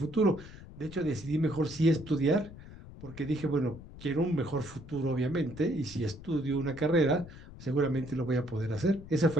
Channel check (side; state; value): left; noise; rumble, 16 dB below the sound